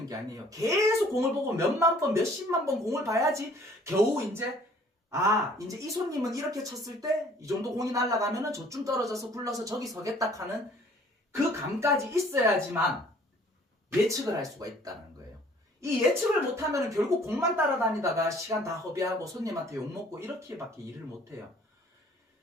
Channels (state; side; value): normal; both; correlation 0.56